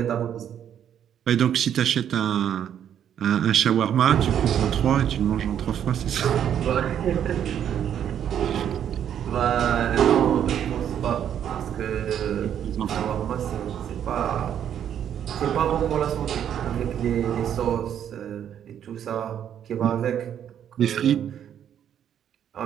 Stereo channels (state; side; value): quieter; left; 9.5 dB